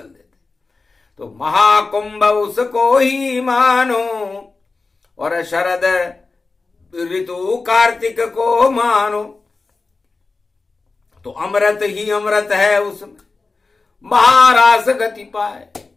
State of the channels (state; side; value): quieter; right; 3.9 dB